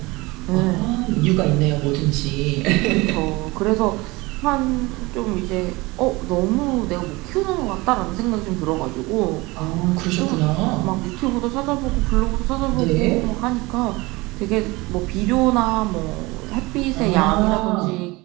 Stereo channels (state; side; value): quieter; left; 22.8 dB